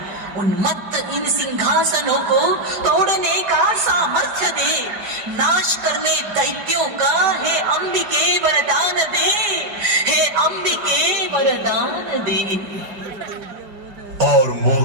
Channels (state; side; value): late; left; 5.0 ms